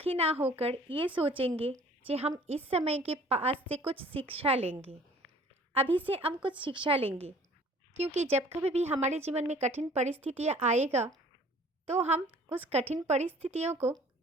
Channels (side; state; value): both; normal; correlation 0.52